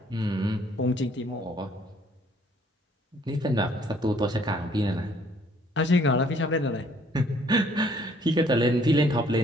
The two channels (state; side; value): normal; both; correlation 0.62